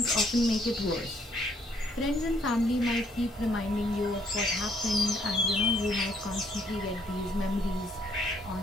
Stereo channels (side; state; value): both; normal; correlation 0.67